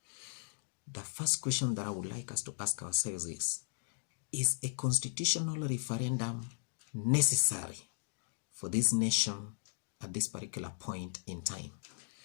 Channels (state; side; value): silent; right; digital silence